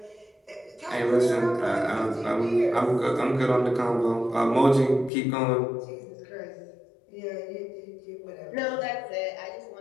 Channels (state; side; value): drops out; right; at 5.1 s